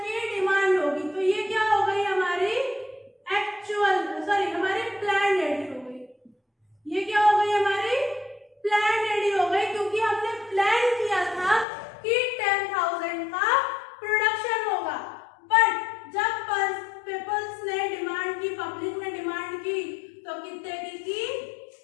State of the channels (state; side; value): drops out; right; at 11.7 s